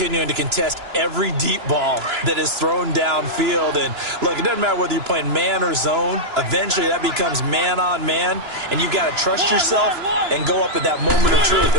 to contest every deep ball that is thrown downfield. And, look, it doesn't matter whether you're playing man or zone. Eventually, that becomes man-on-man. And you've got to trust yourself and go up at that moment of truth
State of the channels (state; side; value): late; left; 2.9 ms